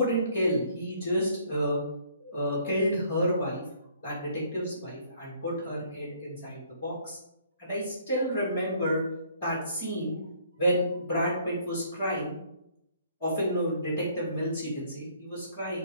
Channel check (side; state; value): both; inverted; correlation -0.61